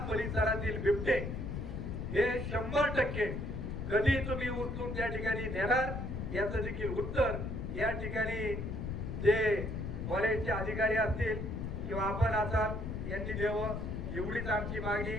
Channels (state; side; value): noise; left; rumble, 4 dB below the sound